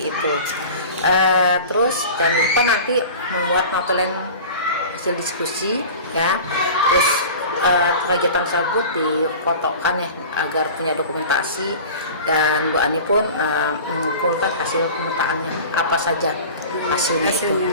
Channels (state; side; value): inverted; both; correlation -0.37